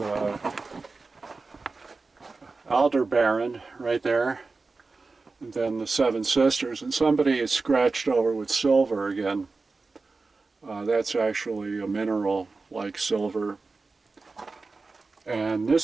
Aldebaran right there, and then the Seven Sisters, and somebody is scratched over with silver again. That's actually a mineral like silver, and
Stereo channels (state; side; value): quieter; left; 3.9 dB